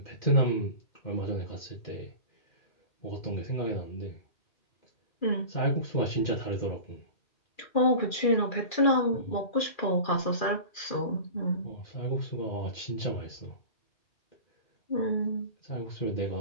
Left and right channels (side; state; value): right; late; 2.4 ms